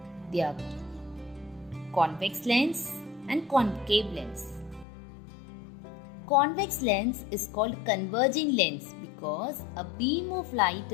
They are convex lens and concave lens. Convex lens is called converging lens because a beam of light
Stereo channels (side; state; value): right; drops out; at 4.9 s